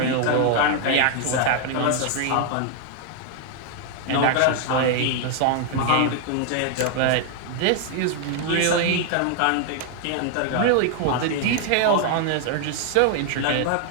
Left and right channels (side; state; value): both; different; correlation 0.00